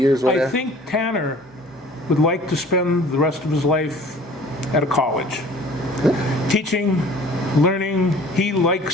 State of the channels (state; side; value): normal; both; correlation 0.49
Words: Whatever. I think Tanner would like to spend the rest of his life at a college, teaching, learning. He likes